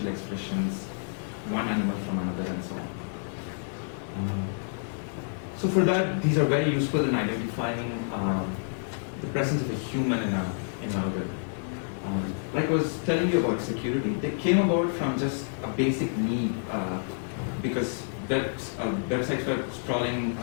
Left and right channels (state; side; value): silent; right; digital silence